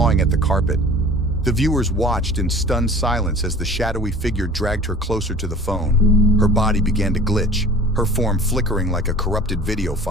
at the carpet. The viewers watched in stunned silence as the shadowy figure dragged her closer to the phone. Her body began to glitch, her form flickering like a corrupted video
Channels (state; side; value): normal; both; correlation 0.44